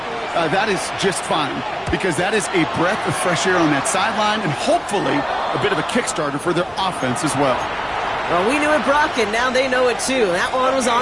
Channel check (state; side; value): identical; both; correlation 1.00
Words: that is just fine, because that is a breath of fresh air on that sideline and hopefully a bit of a Kickstarter for their offense as well. Well, we knew it, Brock, and now they know it too. That one was